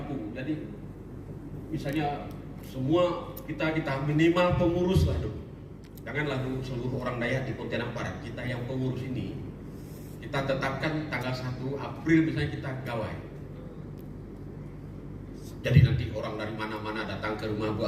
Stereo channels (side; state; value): both; identical; correlation 1.00